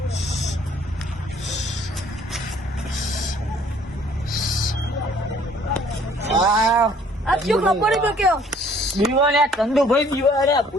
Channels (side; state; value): both; normal; correlation 0.58